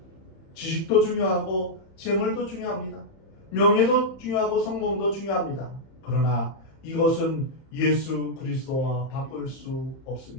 지식도 중요하고 재물도 중요합니다. 명예도 중요하고 성공도 중요합니다. 그러나 이것은 예수 그리스도와 바꿀 수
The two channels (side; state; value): right; late; 31 ms